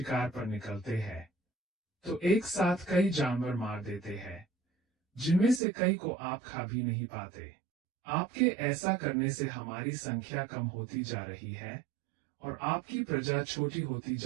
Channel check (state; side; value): drops out; left; at 5.6 s